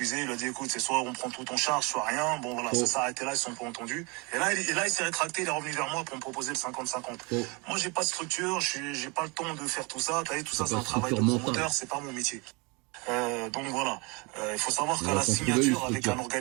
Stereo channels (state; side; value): quieter; left; 29.1 dB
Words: Il a dit, écoute, c'est soit on prend tout en charge, soit rien. Bon, voilà, ça s'est arrêté là, ils se sont pas entendus. Et là, il s'est rétracté, il est revenu vers moi pour me proposer le 50-50. Moi, j'ai pas de structure, j'ai pas le temps de faire tout ça. T'as vu, tout ça, c'est un travail de promoteur, c'est pas mon métier. Donc voilà, il faut savoir qu'à la signature avec un